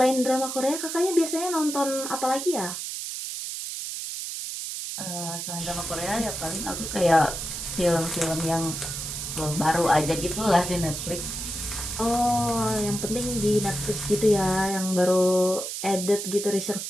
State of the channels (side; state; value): right; noise; hiss, 6 dB below the sound